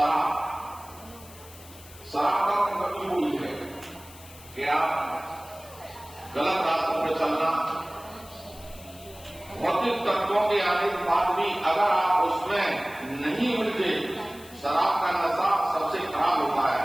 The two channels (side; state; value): left; noise; hiss, 20 dB below the sound